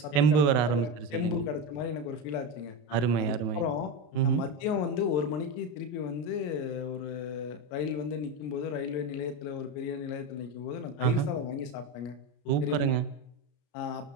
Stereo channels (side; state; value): right; late; 33 ms